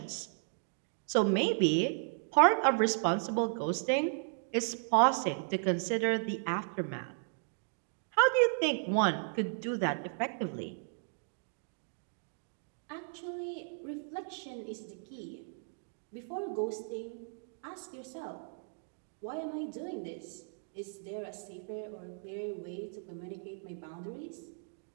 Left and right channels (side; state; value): left; silent; digital silence